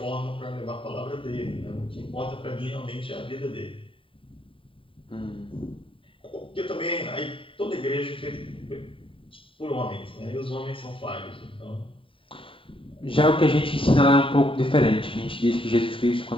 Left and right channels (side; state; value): right; late; 0.25 ms